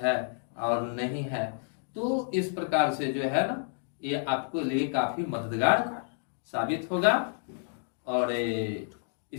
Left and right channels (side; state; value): right; silent; digital silence